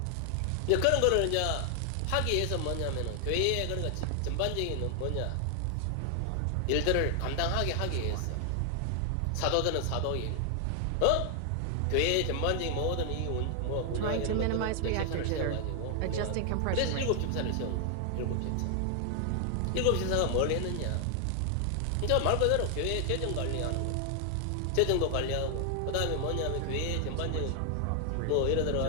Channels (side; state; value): both; different; correlation 0.00